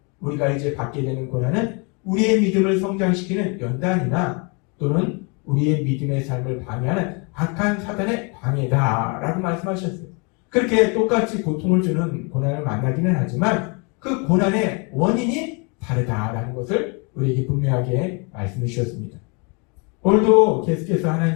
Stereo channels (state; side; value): quieter; right; 32.8 dB